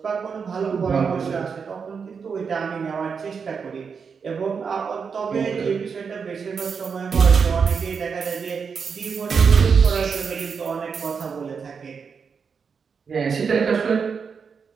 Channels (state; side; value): quieter; left; 5.9 dB